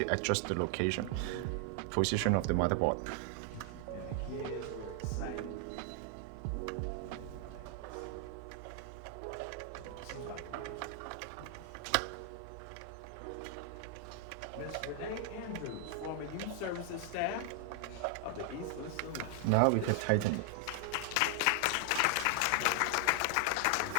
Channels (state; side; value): different; both; correlation 0.00